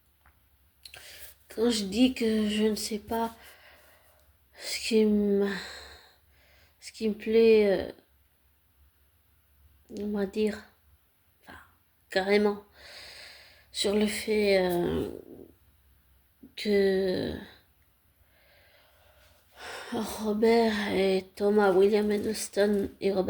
quand je dis que je ne sais pas ce qui me, ce qui me plaît, on va dire, enfin, carrément, sur le fait que Robert et Thomas, William Edelston et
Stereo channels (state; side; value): identical; both; correlation 1.00